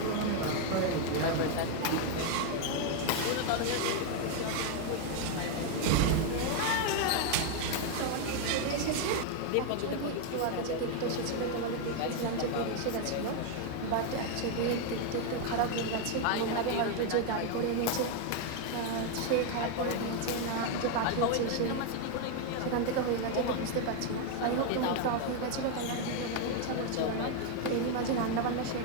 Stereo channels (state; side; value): different; both; correlation 0.01